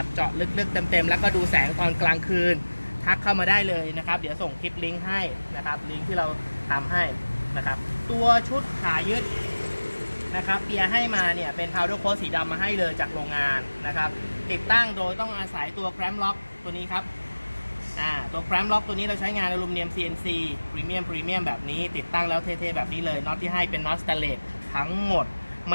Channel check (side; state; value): both; inverted; correlation -1.00